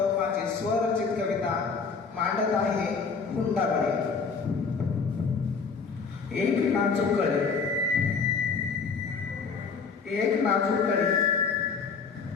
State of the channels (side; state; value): right; quieter; 5.2 dB